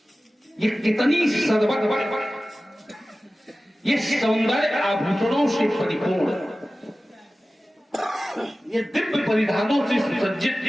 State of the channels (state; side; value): normal; both; correlation 0.96